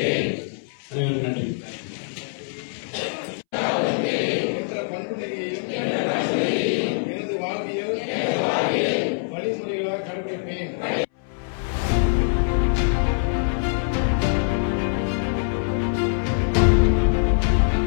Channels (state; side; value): silent; right; 63 dB below the other